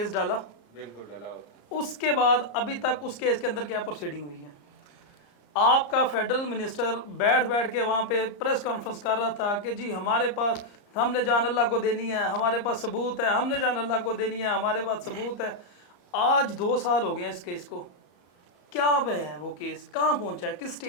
ڈالا، بالکل ڈالا ہوتا ہے۔ اس کے بعد ابھی تک اس کیس کے اندر کیا پروسیڈنگ ہوئی ہے؟ آپ کا فیڈرل منسٹر بیٹھ کے وہاں پہ پریس کانفرنس کر رہا تھا کہ جی ہمارے پاس، ہم نے جان اللہ کو دینی ہے، ہمارے پاس ثبوت ہے، ہم نے جان اللہ کو دینی ہے، ہمارے پاس ثبوت ہے۔ آج 2 سال ہو گئے ہیں اس کیس کو، کیا پہ ہے وہ کیس، کہاں پہنچا ہے، کس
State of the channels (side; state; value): right; late; 34 ms